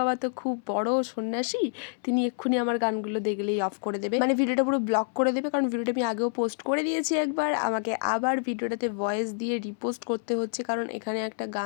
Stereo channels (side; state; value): right; silent; 60 dB below the other